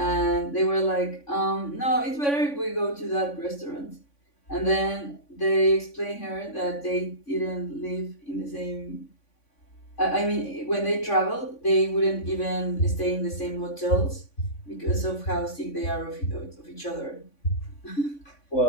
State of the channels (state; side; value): late; right; 3.5 ms